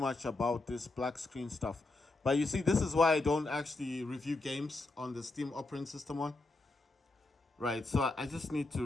about this black screen stuff. But you see, this is why I don't actually review games on the Steam operating system one. Right, so I just need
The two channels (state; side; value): quieter; right; 3.1 dB